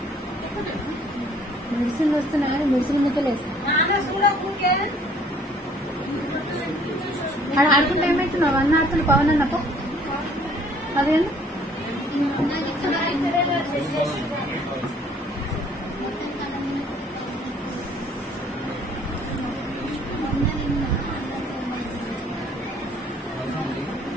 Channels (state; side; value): normal; both; correlation 0.58